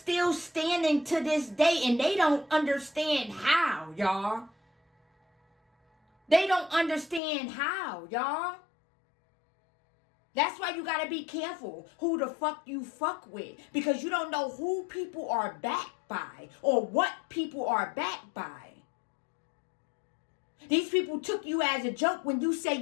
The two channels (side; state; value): right; drops out; at 7.2 s